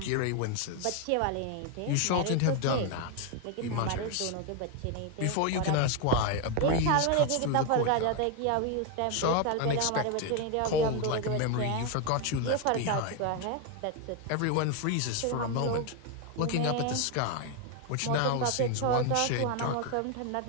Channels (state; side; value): different; both; correlation 0.01